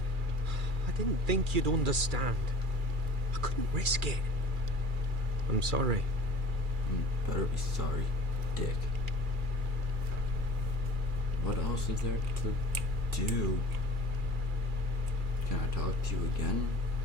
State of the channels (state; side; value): late; left; 2.4 ms